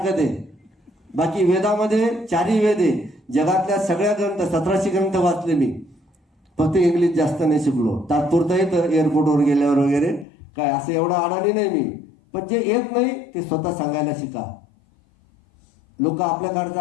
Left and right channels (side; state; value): right; drops out; at 10.2 s